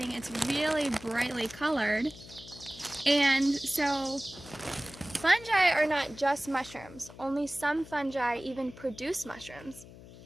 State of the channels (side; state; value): left; noise; hum, 18 dB below the sound